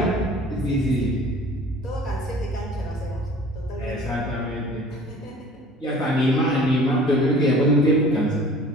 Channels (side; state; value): both; normal; correlation 0.47